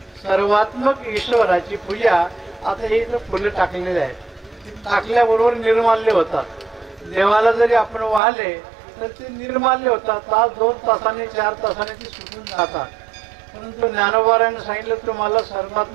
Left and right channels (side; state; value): left; drops out; at 8.2 s